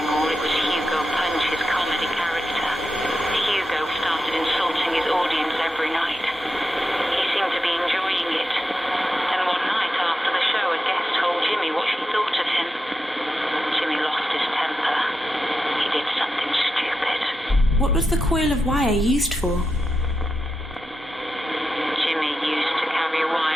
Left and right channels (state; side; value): normal; both; correlation 0.89